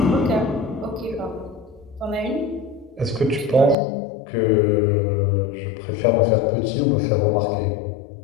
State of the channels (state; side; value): drops out; right; at 3.8 s